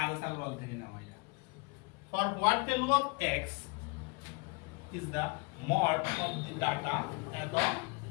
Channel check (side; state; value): right; quieter; 28.9 dB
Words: আরএসআর রল থেকে নেওয়া এটা for what value of x is the mod of the data as of